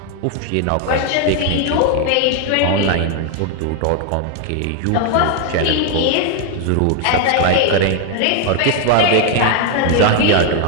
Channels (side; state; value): both; different; correlation 0.00